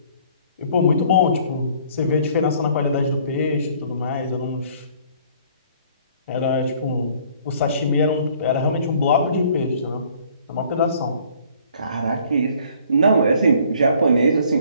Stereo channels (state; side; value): inverted; both; correlation -0.57